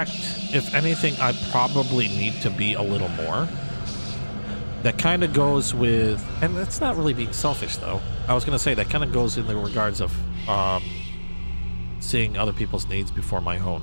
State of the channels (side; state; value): both; inverted; correlation -1.00